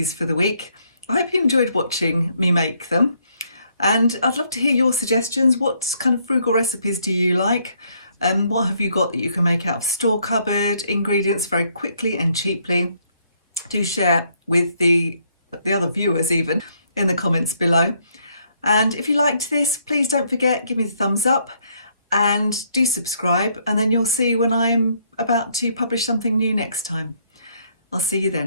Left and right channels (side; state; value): both; inverted; correlation -0.70